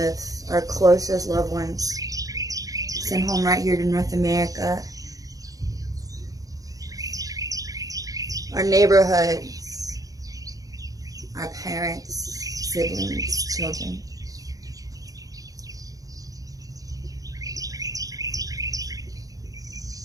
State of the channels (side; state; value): left; late; 0.17 ms